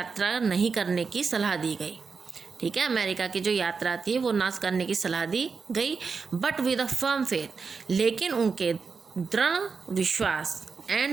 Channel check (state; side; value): quieter; left; 5.1 dB